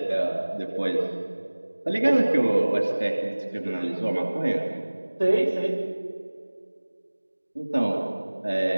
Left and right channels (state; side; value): inverted; both; correlation -1.00